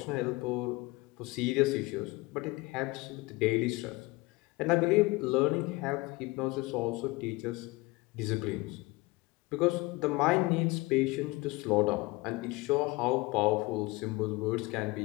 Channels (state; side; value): quieter; right; 22.9 dB